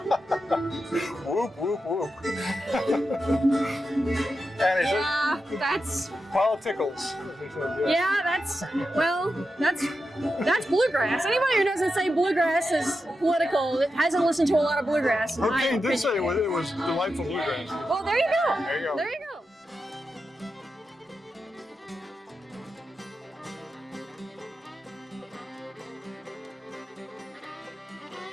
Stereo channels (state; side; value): normal; both; correlation 0.89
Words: Whoop, whoop, whoop. And he said, that's politicals. yeah, that's bluegrass. Anybody who doesn't say bluegrass is political hasn't listened to a lot of bluegrass. in my Hurricane did opinion. say it was delightful bluegrass. Well, there you go. There you go. There you go.